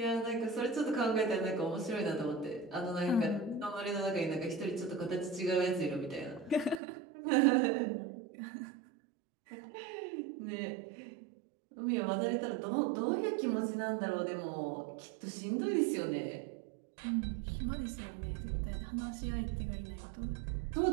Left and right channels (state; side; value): drops out; left; at 6.8 s